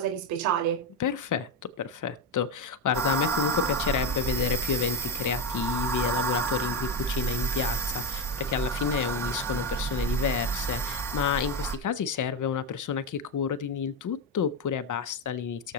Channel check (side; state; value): both; normal; correlation 0.14